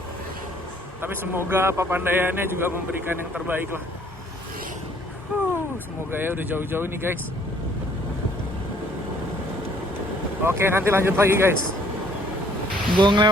tapi semoga Papandayannya juga memberikan yang terbaik lah. Semoga ya, udah jauh-jauh nih guys. Oke, nanti lanjut lagi guys. Gue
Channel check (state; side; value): normal; both; correlation 0.61